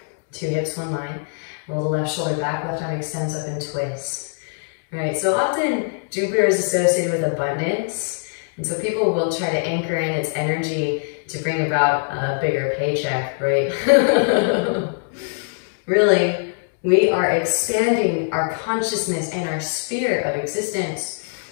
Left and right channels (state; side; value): silent; right; digital silence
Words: 2 hips, 1 line. Roll the left shoulder back, left arm extends up and twist. All right, so often Jupiter is associated with abundance. And so people will try to anchor in its energy to bring about a bigger paycheck, right? Really, we are expanding our consciousness and our sphere of existence